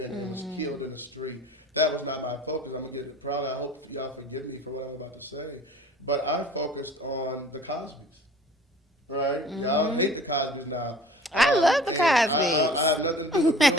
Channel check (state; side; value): normal; both; correlation 0.46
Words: was killed in the street. That was not my focus. I'm going to get proud. I hope y'all forgive me for what I'm about to say. But I focused on the Cosbys, right? Y'all hate the Cosbys now. I love the Cosbys. I have nothing to do with